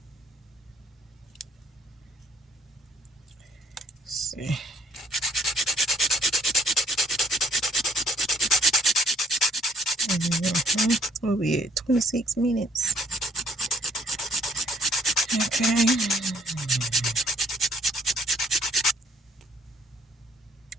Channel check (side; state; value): both; normal; correlation 0.65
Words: Let's see. Mm-hmm. We'll be at 26 minutes. Okay.